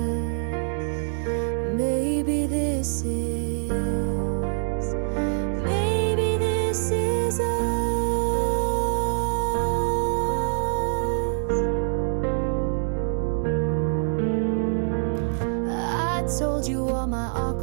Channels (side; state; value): left; silent; 62 dB below the other